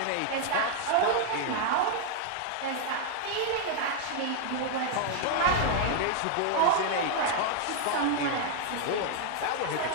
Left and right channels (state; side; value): different; both; correlation 0.00